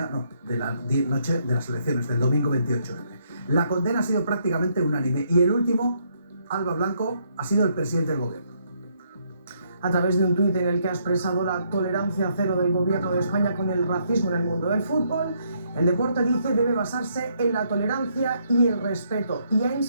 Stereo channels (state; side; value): inverted; both; correlation -0.72